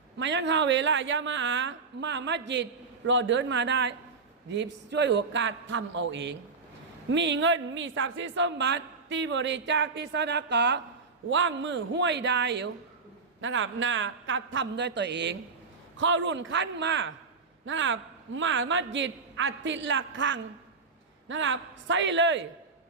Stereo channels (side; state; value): left; quieter; 4.6 dB